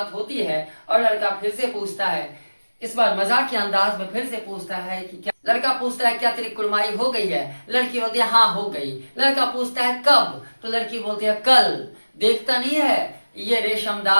होती है। और लड़का फिर से पूछता है, इस बार मजाक के अंदाज में फिर से पूछता है कि क्या, लड़का पूछता है क्या तेरी कुड़माई हो गई है। लड़की बोलती है हाँ हो गई। लड़का पूछता है कब, तो लड़की बोलती है कल। देखता नहीं है ये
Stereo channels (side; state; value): both; inverted; correlation -1.00